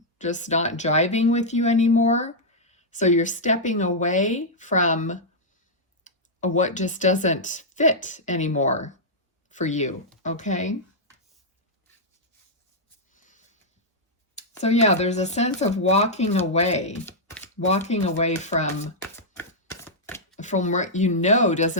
just not jiving with you anymore. So you're stepping away from what just doesn't fit anymore for you, okay? So yeah, there's a sense of walking away from what you know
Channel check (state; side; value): normal; both; correlation -0.07